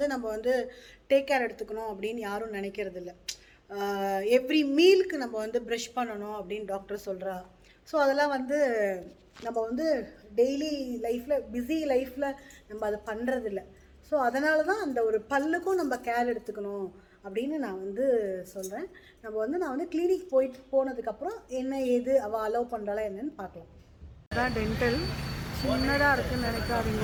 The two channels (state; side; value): identical; both; correlation 1.00